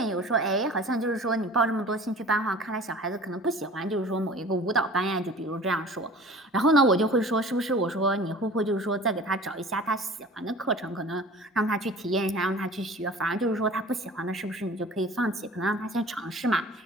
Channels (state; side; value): normal; both; correlation 0.43